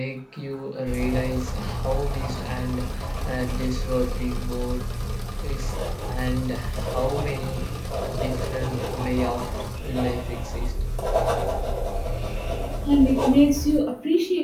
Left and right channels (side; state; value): both; identical; correlation 1.00